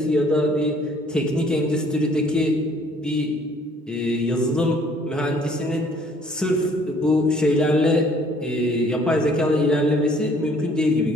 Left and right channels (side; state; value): both; normal; correlation 0.59